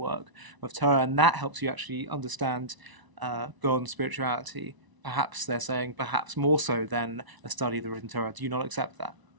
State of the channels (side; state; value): left; late; 1.0 ms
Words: of Torah? And that helps you actually understand God and spirituality, perhaps they're saying perhaps more so than a study of the written Torah. Do you not accept that?